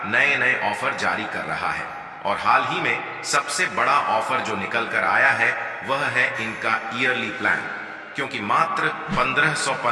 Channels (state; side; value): identical; both; correlation 1.00